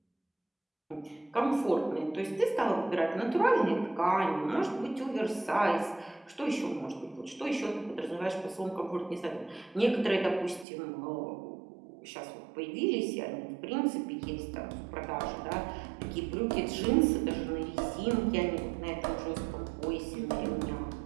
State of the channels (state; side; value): drops out; left; at 10.7 s